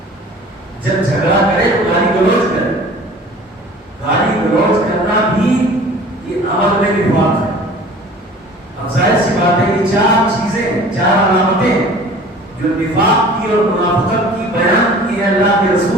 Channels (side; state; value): both; normal; correlation 0.45